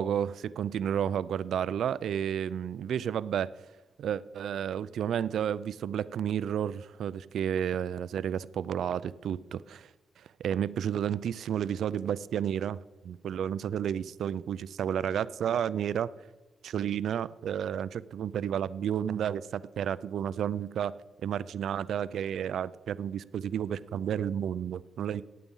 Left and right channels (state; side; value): quieter; left; 8.8 dB